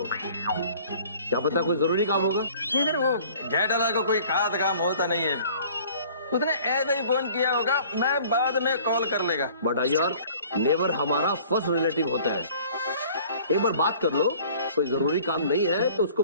क्या पता कोई जरूरी काम होगा। नहीं सर, वो जय दलाल को कोई खास काम होता नहीं है, उसने ऐसे ही फोन किया होगा, मैं बाद में कॉल कर लेगा। बट अय्यर, नेबर हमारा फर्स्ट रिलेटिव होता है, एक बार बात कर लो, कोई जरूरी काम नहीं है तो उसको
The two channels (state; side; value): inverted; both; correlation -0.51